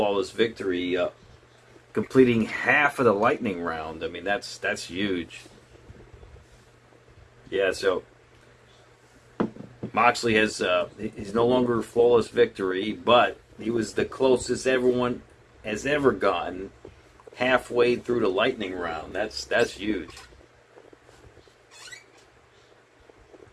victory, completing half of the lightning round. I mean, that's huge. Yeah, so Moxley has he's no longer flawless victory, but he was the closest everyone has ever gotten halfway through the lightning round. That's huge.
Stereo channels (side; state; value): both; identical; correlation 1.00